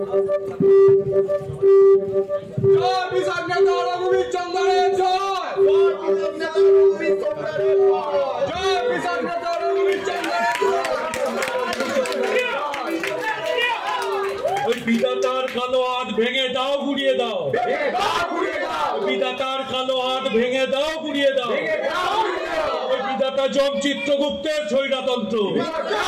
জয় পিশাচ নেতা রঘুবীর চন্দ্রের জয়, জয় পিশাচ ভেঙে দাও গুড়িয়ে দাও, বিধাতার কালো হাত ভেঙে দাও গুড়িয়ে দাও। ওই বিধাতা যম চিত্রগুপ্তের স্বৈরতন্ত্র,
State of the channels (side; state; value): both; identical; correlation 1.00